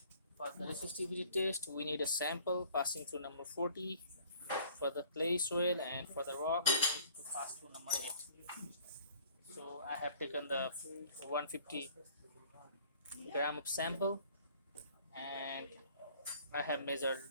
For the resistivity test we need a sample passing through number 40 for the clay soil, and for the rock we need to pass through number 8. So I have taken the 150 gram of sample and I have measured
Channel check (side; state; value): both; inverted; correlation -0.54